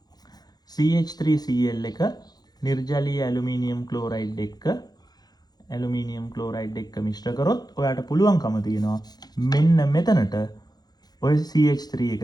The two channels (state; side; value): late; right; 0.19 ms